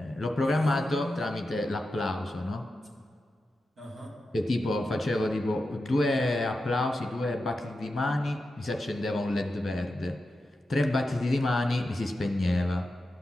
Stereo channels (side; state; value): both; normal; correlation 0.90